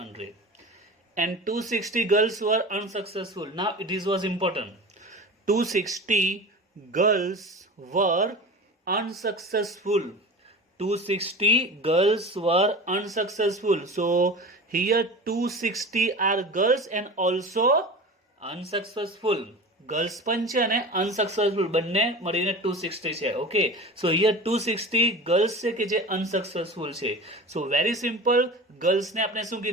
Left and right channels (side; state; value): both; normal; correlation 0.33